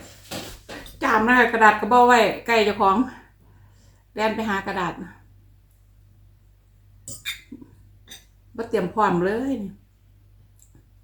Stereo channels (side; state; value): both; identical; correlation 1.00